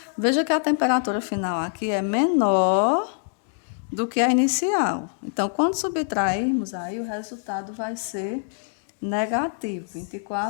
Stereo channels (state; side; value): silent; right; digital silence